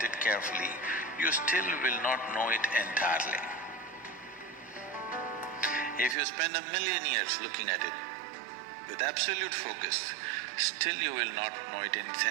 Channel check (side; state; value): left; drops out; at 6.2 s